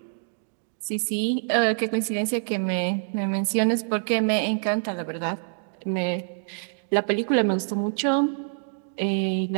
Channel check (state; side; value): silent; left; digital silence